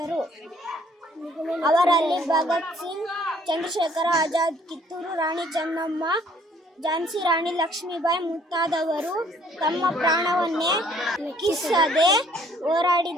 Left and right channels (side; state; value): both; normal; correlation 0.61